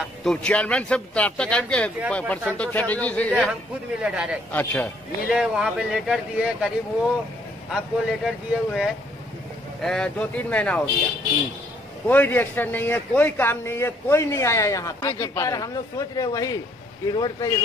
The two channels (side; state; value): both; normal; correlation 0.66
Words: तो चेयरमैन से राब्ता कायम किया परसेंटो चटर्जी से? हम खुद मिले डायरेक्ट। अच्छा, मिले, वहाँ पे लेटर दिए। करीब वो आपको लेटर दिए हुए 2-3 महीना हो गया। कोई रिएक्शन नहीं है, कोई काम नहीं है, कोई नहीं आया यहाँ पर। हम लोग सोच रहे वही कि रोड